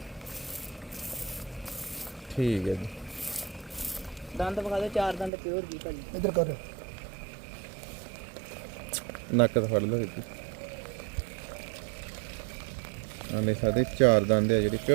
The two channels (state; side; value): drops out; left; at 5.3 s